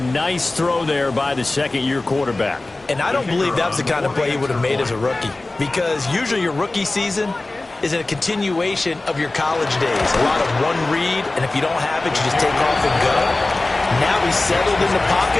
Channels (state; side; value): quieter; right; 3.0 dB